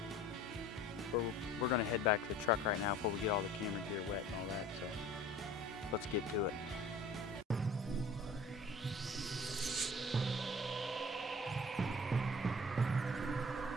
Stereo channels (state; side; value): normal; both; correlation 0.46